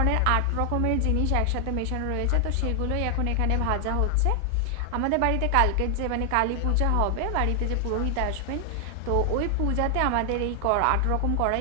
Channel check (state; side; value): different; both; correlation 0.00